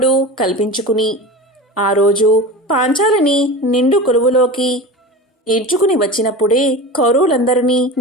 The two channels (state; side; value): normal; both; correlation 0.30